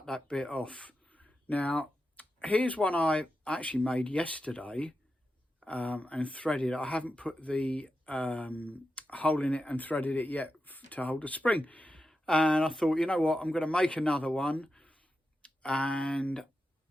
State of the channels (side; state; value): both; normal; correlation 0.90